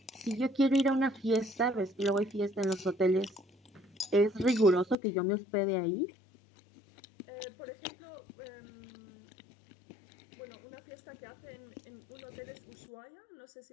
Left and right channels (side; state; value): right; drops out; at 5.0 s